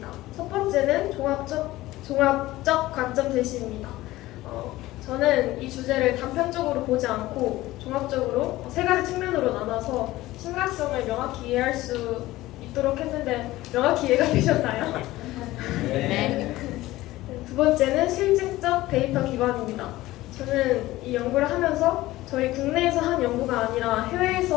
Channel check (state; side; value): quieter; right; 17.3 dB